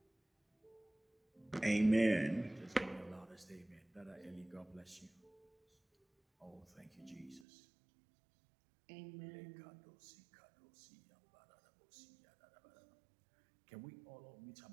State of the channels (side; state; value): left; drops out; at 7.5 s